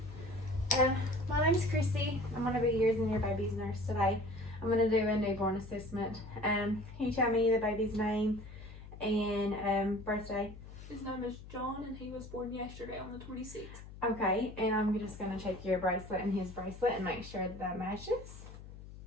My name's Christi. I'm going to be yours and your baby's nurse today. I'm going to do a newborn assessment. Can you tell me the baby's name and birthday? His name is John and he was born yesterday on the 26th. Okay, and I'm just going to check your bracelet and his bracelet and make sure that matches.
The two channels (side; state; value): left; noise; hum, 15 dB below the sound